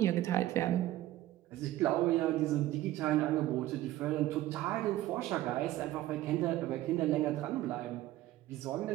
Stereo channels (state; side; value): quieter; left; 15.1 dB